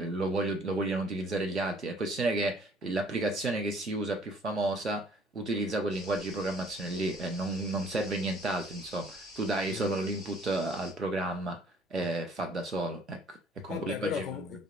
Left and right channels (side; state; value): both; normal; correlation 0.58